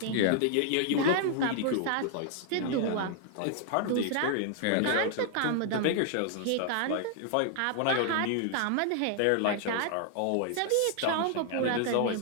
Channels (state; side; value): different; both; correlation 0.00